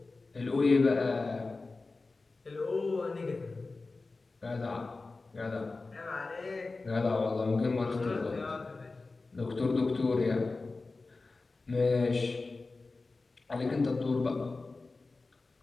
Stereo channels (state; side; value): quieter; right; 3.6 dB